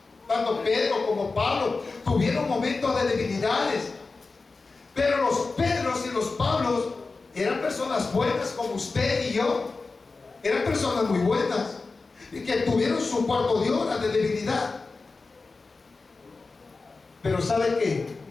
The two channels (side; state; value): right; quieter; 3.9 dB